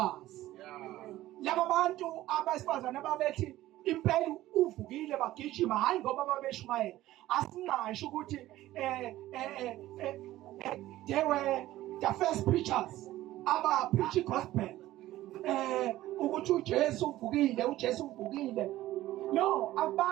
Laba bantu abesifazane ababethi impela uvukile bagijima hayi ngoba babeshumayela. Asingasho ukuthi they were the first preachers aba preach gospel ukuthi uJesu uvukile, uJesu uvukile. No,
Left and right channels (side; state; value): left; quieter; 15.4 dB